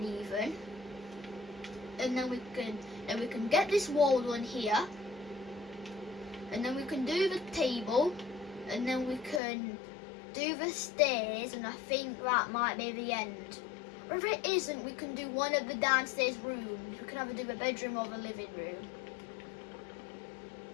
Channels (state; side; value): drops out; right; at 9.4 s